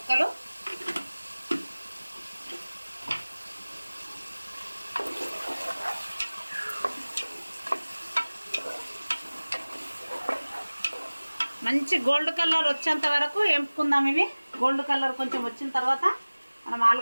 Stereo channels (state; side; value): inverted; both; correlation -1.00